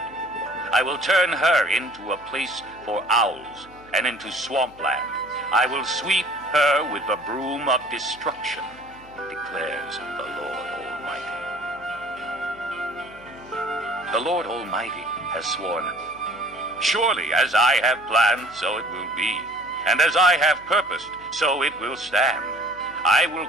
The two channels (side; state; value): right; noise; hum, 26 dB below the sound